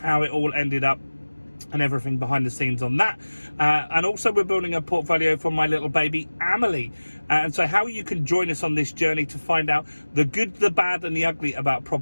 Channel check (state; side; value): inverted; both; correlation -1.00